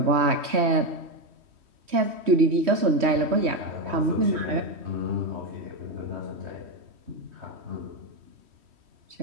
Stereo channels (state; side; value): late; left; 3.1 ms